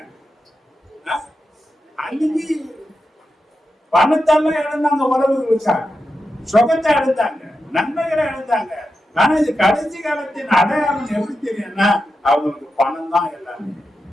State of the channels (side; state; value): both; normal; correlation 0.89